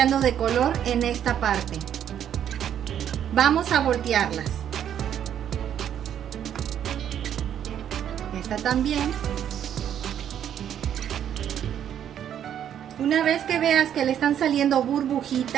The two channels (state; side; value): quieter; left; 9.7 dB